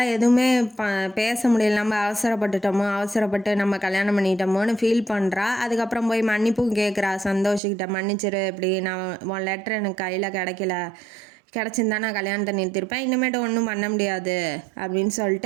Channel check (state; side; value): drops out; left; at 7.6 s